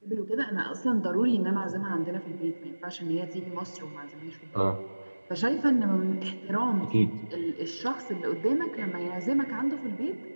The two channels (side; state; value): both; inverted; correlation -1.00